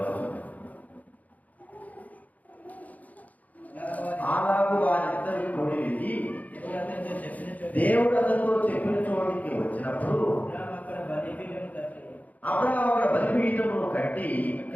వచనం. అలాగూ వారిద్దరు కూడి వెళ్ళి దేవుడు అతనితో చెప్పిన చోటికి వచ్చినప్పుడు అబ్రహాము అక్కడ బలిపీఠమును కట్టి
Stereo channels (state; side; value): late; right; 0.076 ms